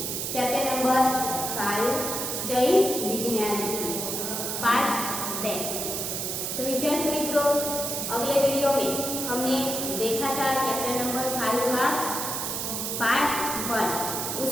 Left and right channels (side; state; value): right; noise; hiss, 2 dB below the sound